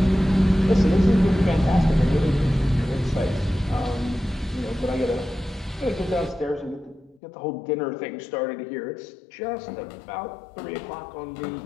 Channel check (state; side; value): drops out; right; at 7.2 s